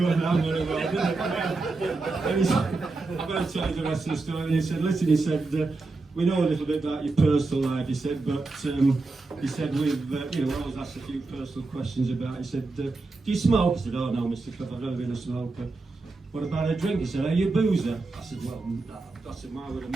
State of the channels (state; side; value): quieter; left; 3.5 dB